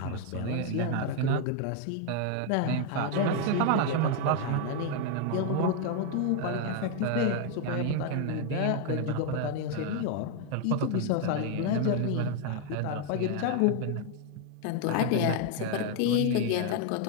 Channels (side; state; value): both; different; correlation 0.00